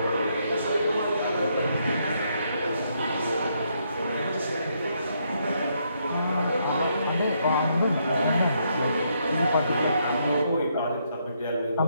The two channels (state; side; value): inverted; both; correlation -0.75